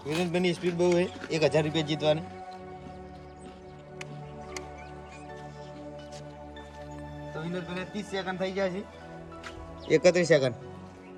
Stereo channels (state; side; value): identical; both; correlation 1.00